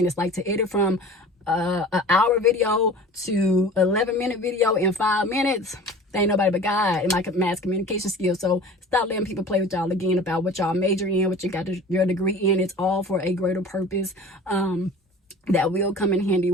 Like, to edit from an hour video to 11-minute video in 5 minutes, there ain't nobody but God and my mass communication skills. So stop letting people play with y'all again about what y'all major in, what you got your degree in. It's all for a greater purpose that will come in handy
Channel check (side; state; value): both; normal; correlation 0.41